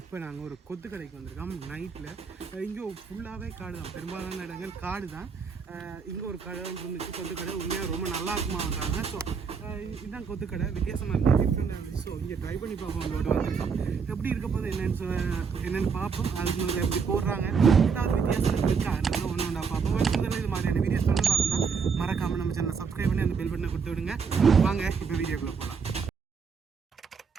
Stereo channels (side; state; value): left; quieter; 5.8 dB